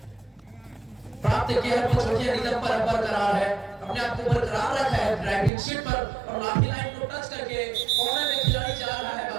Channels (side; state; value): left; drops out; at 5.5 s